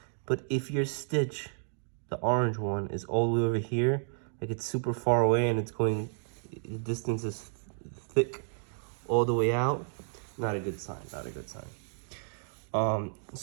But if your stitch, the orange one, is all the way over here, like it's super far away and it's going, the distance is thick all the way out, not a good sign, not a good sign.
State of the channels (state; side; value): silent; left; digital silence